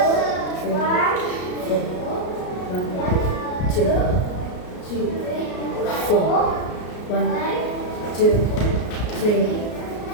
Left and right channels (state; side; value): late; right; 33 ms